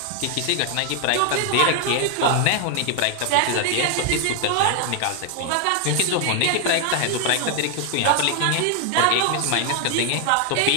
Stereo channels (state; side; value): different; both; correlation 0.00